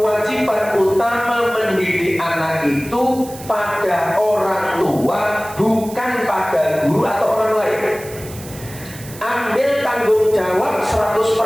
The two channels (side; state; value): right; noise; hiss, 16 dB below the sound